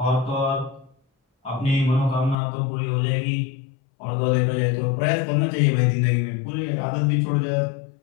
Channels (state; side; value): drops out; right; at 2.4 s